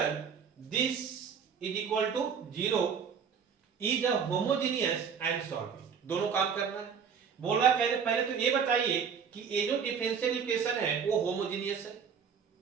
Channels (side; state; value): left; quieter; 6.8 dB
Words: this is equal to 0 is a homogeneous and solve it. दोनों काम करना है। बोल रहा है पहले तो ये बताइए कि ये जो डिफरेंशियल इक्वेशन है वो होमोजेनियस है,